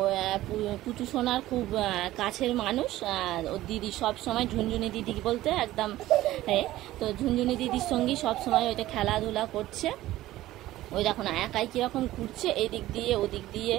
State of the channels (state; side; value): quieter; left; 15.6 dB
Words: পুচু সোনার খুব কাছের মানুষ। ওর দিদি সব সময় ঝুনঝুনি দিদি বলতে একদম, তো ঝুনঝুনি দিদির সঙ্গেই সব সময় ওইটা খেলাধুলা করছে। ওই দেখো না একাই কীরকম ঘুরছে, এদিক দিয়ে ওদিক দিয়ে